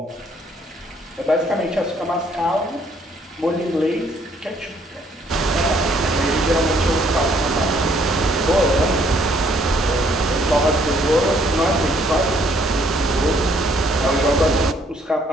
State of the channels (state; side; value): normal; both; correlation 0.65